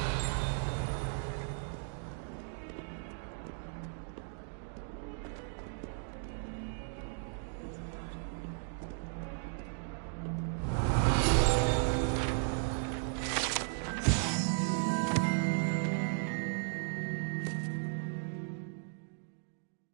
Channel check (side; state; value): left; silent; 54 dB below the other